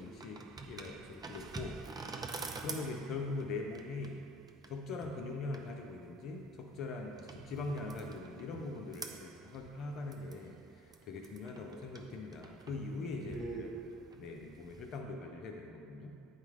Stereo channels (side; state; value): both; normal; correlation 0.50